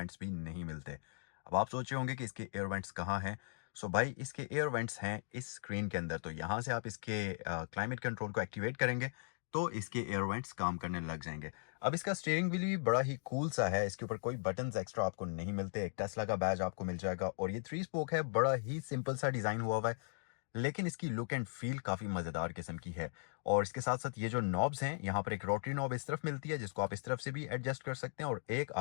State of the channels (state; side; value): silent; right; digital silence